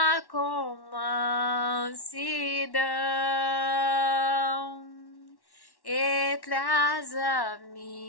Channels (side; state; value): right; late; 1.1 ms